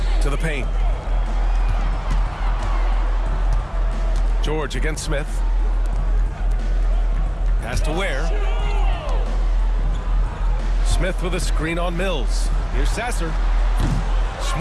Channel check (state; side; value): identical; both; correlation 1.00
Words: To the paint. George against Smith. Pass to Ware. Smith with a screen on Mills. Here's Sasser.